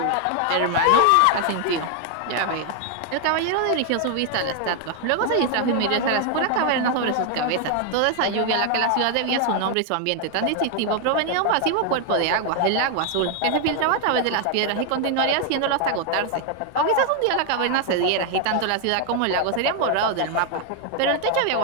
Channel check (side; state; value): both; different; correlation 0.00